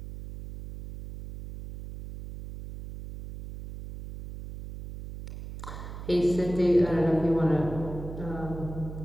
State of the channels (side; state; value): right; noise; hum, 11 dB below the sound